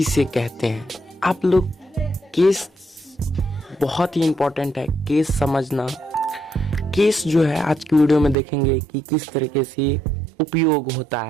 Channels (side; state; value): left; drops out; at 8.3 s